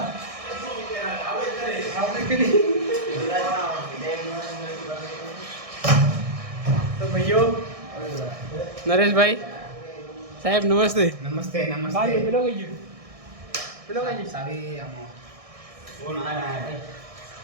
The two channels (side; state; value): left; late; 1.6 ms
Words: તો ભાઈઓ નરેશભાઈ સાહેબ નમસ્તે. નમસ્તે ભાઈ પેલો કઈ ગયો? પેલો કઈ ગયો? સારી